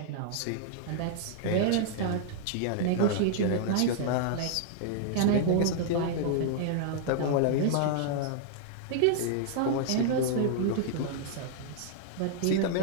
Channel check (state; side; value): different; both; correlation -0.01